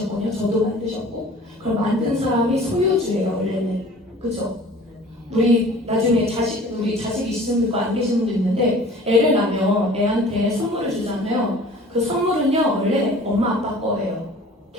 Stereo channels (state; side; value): normal; both; correlation 0.46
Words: 저도 만드셨고. 그럼 만든 사람이 소유주예요, 원래는. 그죠? 우리 나중에 우리 자식 있으신 분도 안 계신 분도 있는데, 애를 낳으면 애한테 선물을 주잖아요. 그 선물은요, 원래 엄마 아빠 거예요.